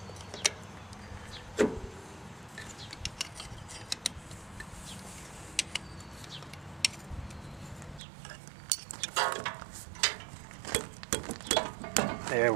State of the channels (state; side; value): drops out; left; at 8.0 s